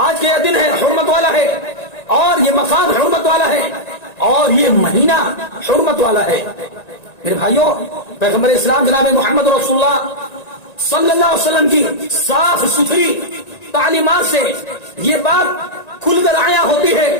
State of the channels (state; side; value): late; right; 1.9 ms